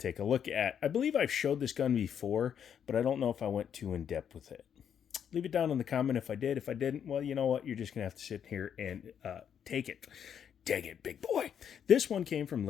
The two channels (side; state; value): right; quieter; 8.4 dB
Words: a look at. I believe I've showed this gun before, but I don't know if I went too in-depth with it. Leave it down in the comment if I did. If I didn't, well, you know what? You're just going to have to sit here and take it. Dang it, big boy. This one came from